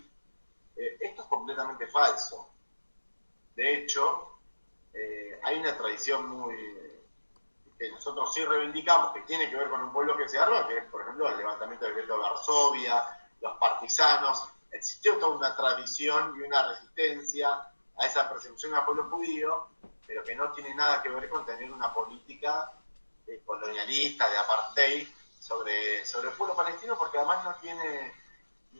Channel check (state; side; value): inverted; both; correlation -1.00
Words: Esto es completamente falso. De hecho, hay una tradición que nosotros sí reivindicamos, que tiene que ver con un pueblo que se arma, que es, por ejemplo, el levantamiento del gueto de Varsovia, los partisanos. Existió toda una tradición y una resistencia a esa persecución al pueblo judío, pero que no tiene nada que ver con tener una política colonialista, de apartheid, sobre el pueblo palestino, porque además